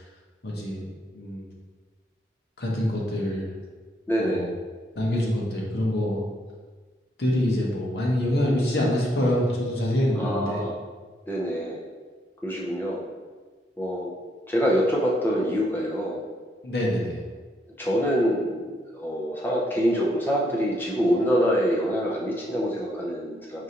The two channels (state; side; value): normal; both; correlation 0.74